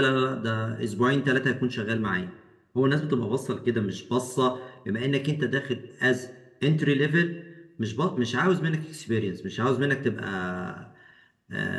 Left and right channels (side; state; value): both; identical; correlation 1.00